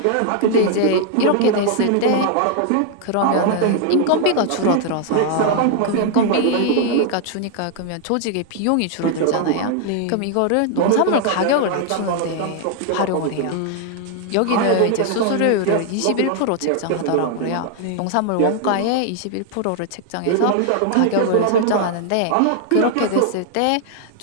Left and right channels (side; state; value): both; different; correlation 0.00